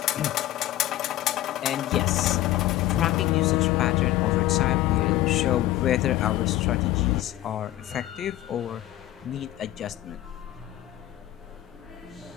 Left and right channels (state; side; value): quieter; right; 14.6 dB